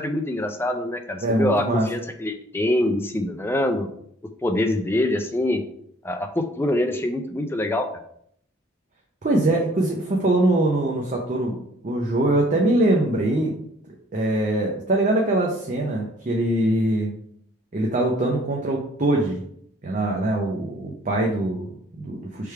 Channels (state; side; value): normal; both; correlation 0.58